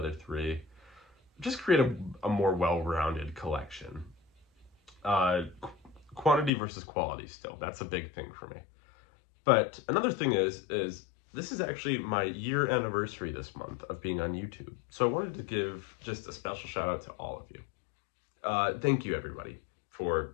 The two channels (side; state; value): right; drops out; at 6.5 s